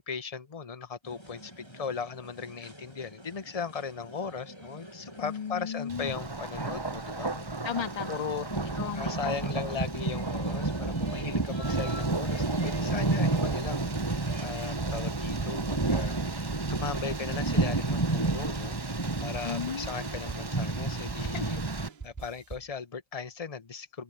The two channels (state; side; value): late; right; 1.1 ms